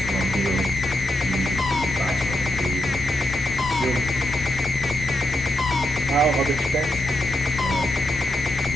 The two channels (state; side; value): normal; both; correlation 0.83